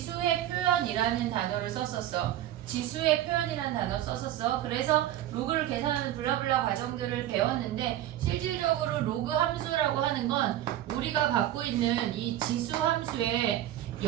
표현이라는 단어를 썼었어. 지수의 표현이라는 단어 썼었어. 그래서 로그를 계산하는 블라블라 과정들을 배웠는데 실질적으로 로그 함수라고 하는 건 우리가 갖고 있는 이 지수 함수의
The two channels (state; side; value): quieter; left; 12.8 dB